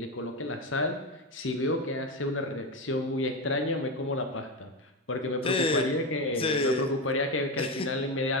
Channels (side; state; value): both; normal; correlation 0.15